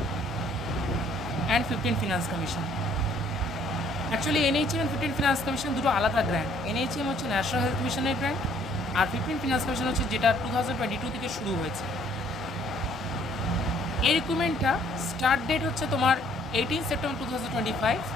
and 15 finance commission. Actually NHM and 15 finance commission দুটো আলাদা গ্র্যান্ট। NHM হচ্ছে ন্যাশনাল হেলথ মিশনের গ্র্যান্ট, আর 15 ফিনান্স কমিশন হচ্ছে যেটা 2022 থেকে শুরু হয়েছে। এই রিক্রুটমেন্টটা স্টার্ট ডেট হচ্ছে তোমার 18 সেপ্টেম্বর 2025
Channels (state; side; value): normal; both; correlation 0.62